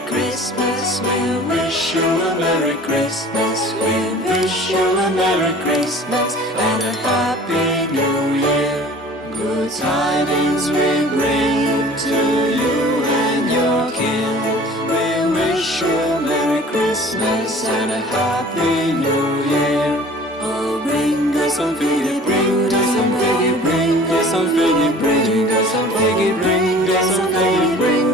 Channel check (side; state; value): both; normal; correlation 0.46